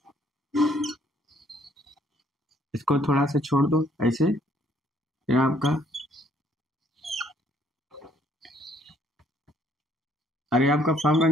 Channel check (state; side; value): normal; both; correlation 0.65